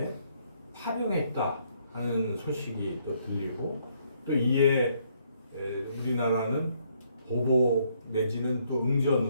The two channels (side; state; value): both; inverted; correlation -0.70